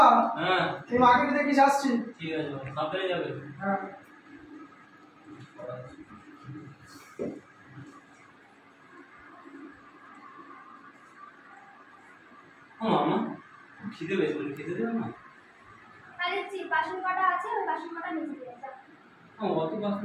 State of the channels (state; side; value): identical; both; correlation 1.00